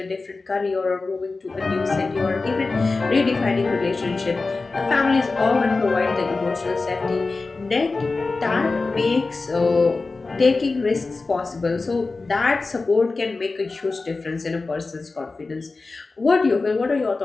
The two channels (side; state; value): right; quieter; 3.8 dB